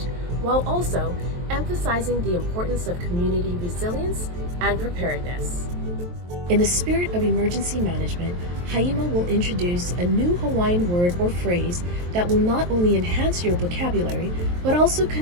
while also emphasizing the importance of community resilience and preparedness. In the spirit of emergency management, Haima will introduce a new Hawaiian word or phrase that will not only enhance your vocabulary, but also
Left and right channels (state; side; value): late; left; 23 ms